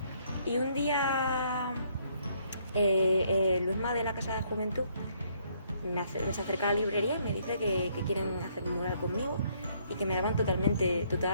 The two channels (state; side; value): inverted; both; correlation -0.68